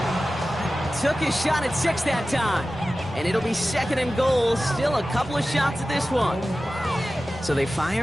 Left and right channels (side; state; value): both; normal; correlation 0.95